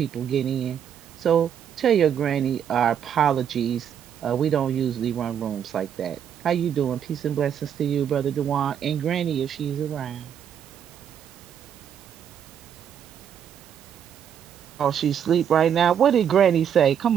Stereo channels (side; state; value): left; quieter; 8.7 dB